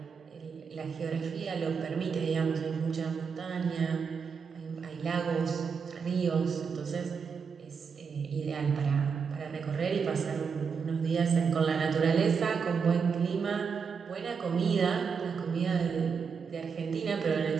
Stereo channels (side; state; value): left; quieter; 5.9 dB